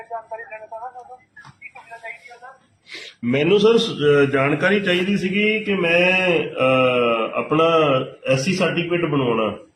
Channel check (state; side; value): identical; both; correlation 1.00